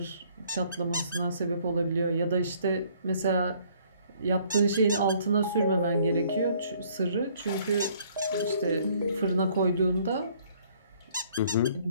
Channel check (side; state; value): both; inverted; correlation -0.61